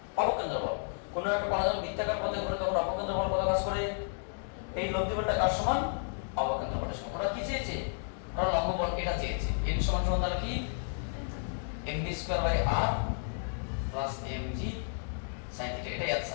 অবকেন্দ্র বল। কোন একটা কণা যখন বৃত্তাকার পথে ঘুরে তখন অবকেন্দ্র বল কত কাজ করে? এই লব্ধি বলটা কার সমান? অবকেন্দ্র বলের সমান। ওরা কি চেয়েছে? ওরা লম্ববল এটা চেয়েছে। n সমান সমান তাহলে কি mv square by r plus mg sin theta, এটাই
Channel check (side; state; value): right; silent; digital silence